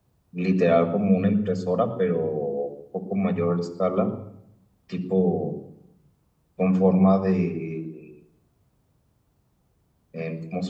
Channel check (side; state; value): both; identical; correlation 1.00